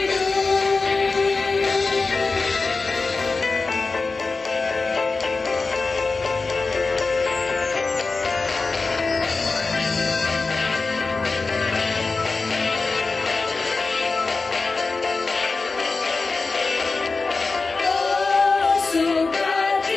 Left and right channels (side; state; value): right; quieter; 4.0 dB